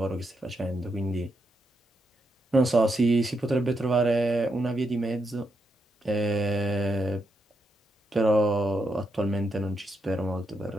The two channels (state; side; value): normal; both; correlation 0.82